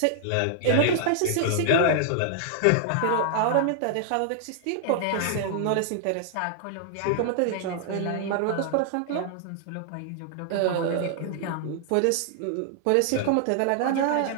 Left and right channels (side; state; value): both; different; correlation -0.01